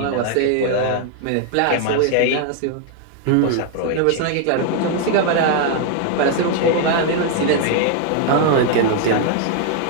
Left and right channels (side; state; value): both; different; correlation 0.00